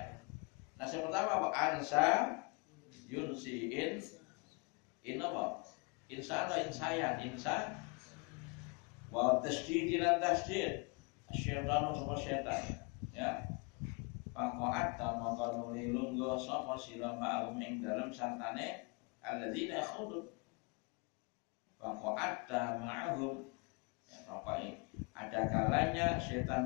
Nasi pertama apa ansa yunsiin in apa insa atau insayan insa wa tasdid lan tasdid syaitan atau syaitan ya faqat tamaka nulilun go sapa sira ma'um ing dalem santane alladzina yakhudun faqat ma'hum ya pokoknya ada kalanya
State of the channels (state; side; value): quieter; right; 31.4 dB